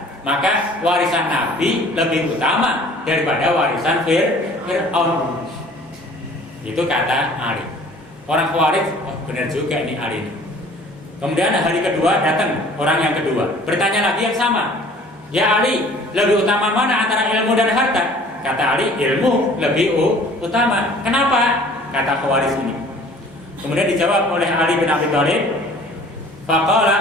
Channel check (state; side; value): normal; both; correlation 0.51